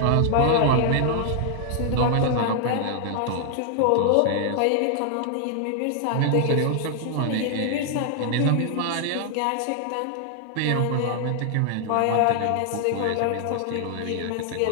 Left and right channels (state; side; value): different; both; correlation 0.00